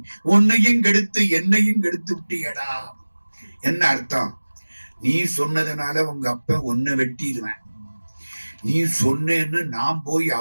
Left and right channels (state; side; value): inverted; both; correlation -1.00